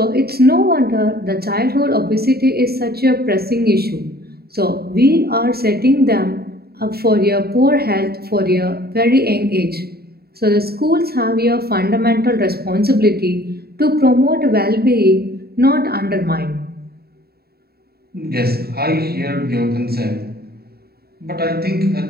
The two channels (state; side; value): late; left; 0.45 ms